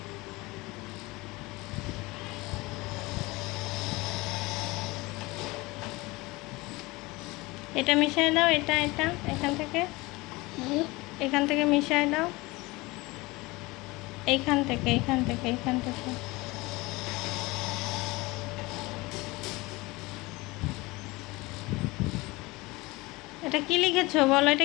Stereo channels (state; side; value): quieter; right; 22.5 dB